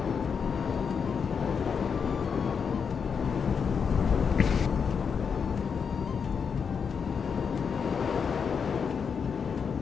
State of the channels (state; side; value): quieter; right; 6.3 dB